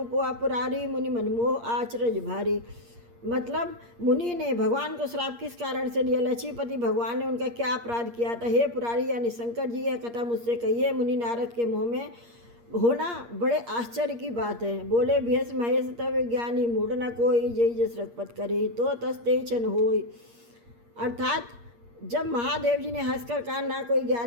पुआ पुरारी मुनि मनमोह आचरज भारी। मतलब मुनि ने भगवान को श्राप किस कारण से दिया, लक्ष्मीपति भगवान ने उनका क्या अपराध किया था। हे पुरारी यानी शंकर जी, यह कथा मुझसे कहिए। मुनि नारद के मुँह में होना बड़े आश्चर्य की बात है। बोले भेष महेश तब ज्ञानी मूढ़ न कोई, जय जस रघुपत करे तो तस्ते छन होय। अर्थात जब महादेव जी ने हंसकर कहा ना कोई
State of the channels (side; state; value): left; late; 8.5 ms